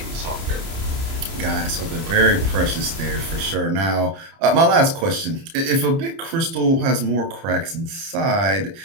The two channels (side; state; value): left; late; 30 ms